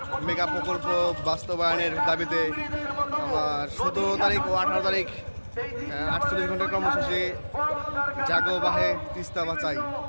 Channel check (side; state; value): both; inverted; correlation -1.00